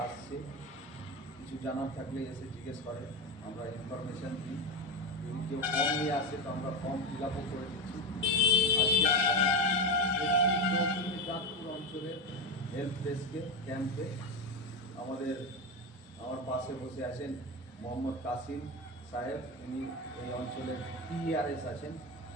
আসছে, কিছু জানার থাকলে এসে জিজ্ঞেস করে, আমরা ইনফরমেশান দিই। যদি কেউ ফর্ম নিয়ে আসে তো আমরা ফর্ম ফিল আপও করে দিচ্ছি। আজকে চাঁদপুর অঞ্চলের হেল্প ডেস্কে ক্যাম্পে আমার পাশে বসে আছেন মোহাম্মদ কাসিম সাহেব, উনি এই অঞ্চলের PRS আছেন,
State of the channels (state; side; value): normal; both; correlation 0.16